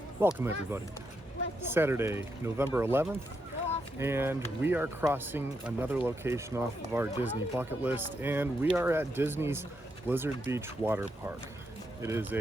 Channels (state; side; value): normal; both; correlation 0.81